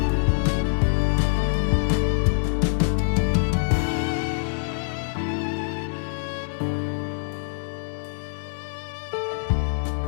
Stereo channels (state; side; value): silent; right; digital silence